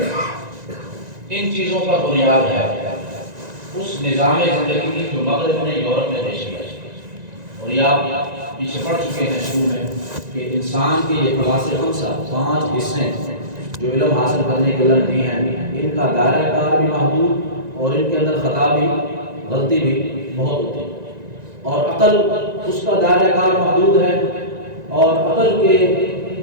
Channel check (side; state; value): left; late; 1.9 ms